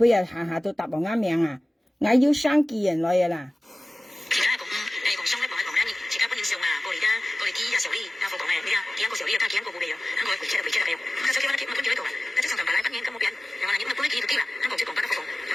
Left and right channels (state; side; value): normal; both; correlation 0.97